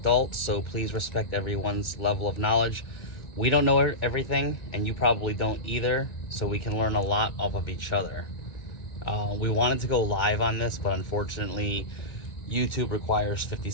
so please respect everyone's level of knowledge. We don't know everything, and you probably don't either, so we can learn a lot off of each other. We wanted to go live on this, but unfortunately YouTube requires 50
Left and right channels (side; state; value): right; late; 2.2 ms